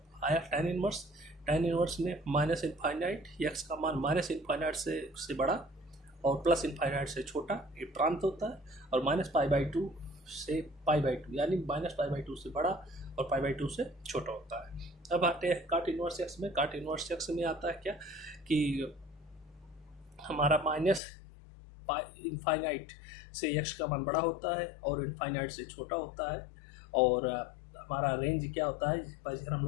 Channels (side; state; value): right; drops out; at 21.0 s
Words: आया टेन इनवर्स में -∞, एक्स का मान -∞ से बड़ा और +∞ से छोटा, ये प्रांत होता है। और -π/2 से π/2 यानी -π/2 से बड़ा और π/2 से छोटा होता है। अब आते हैं काट इनवर्स एक्स में। काट इनवर्स एक्स में आता है क्या कि हमारा -∞ से x का मान बड़ा होता है और इनफाइनाइट से छोटा होता है। और हमारा रेंज क्या होता है, इधर हम